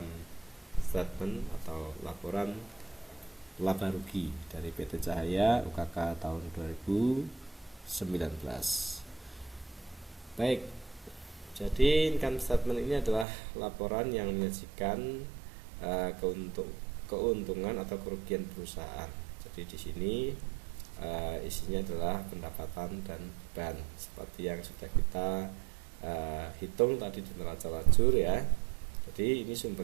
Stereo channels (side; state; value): left; drops out; at 13.2 s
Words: statement atau laporan laba rugi dari PT Cahaya UKK tahun 2019. Baik, jadi income statement ini adalah laporan yang menyajikan keuntungan atau kerugian perusahaan. Jadi di sini isinya adalah pendapatan dan beban seperti yang sudah kita hitung tadi di neraca lajur ya. Jadi ini